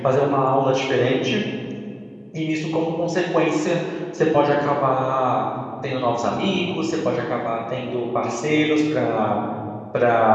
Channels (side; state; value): both; identical; correlation 1.00